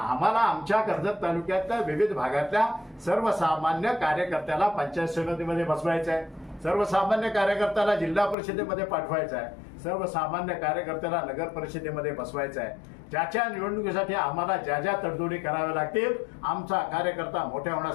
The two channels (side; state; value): right; drops out; at 8.3 s